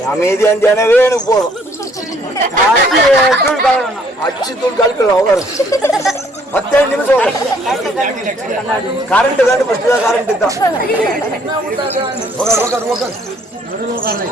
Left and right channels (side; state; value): both; normal; correlation 0.63